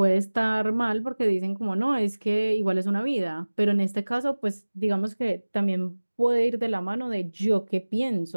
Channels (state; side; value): inverted; both; correlation -1.00